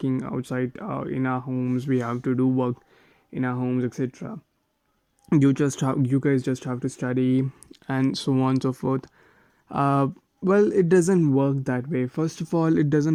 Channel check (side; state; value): both; identical; correlation 1.00